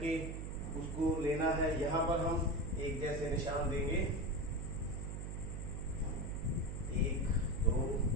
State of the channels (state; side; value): noise; right; hum, 5 dB below the sound